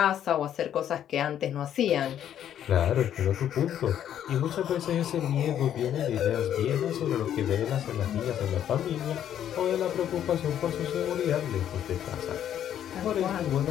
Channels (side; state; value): right; quieter; 10.3 dB